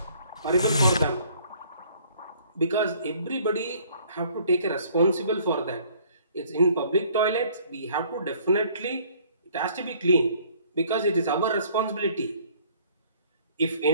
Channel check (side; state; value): both; inverted; correlation -0.58